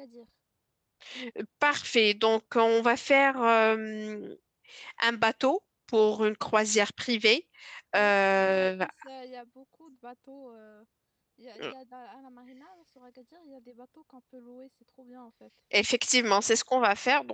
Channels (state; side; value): identical; both; correlation 1.00